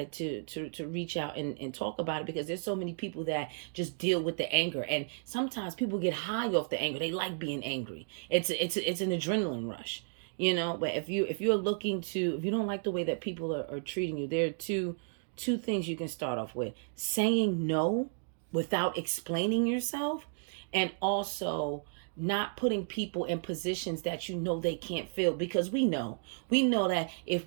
to reach out and talk about it, because there's so many people that just deal with the anger, and sometimes people get high off the anger. They like being angry. It's an adrenaline rush. But if you don't like the way that people are treating you, there are two things you can start off with: saying no without explaining yourself, and also not putting people in positions that they can't fill. Because we know that if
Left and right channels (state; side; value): silent; left; digital silence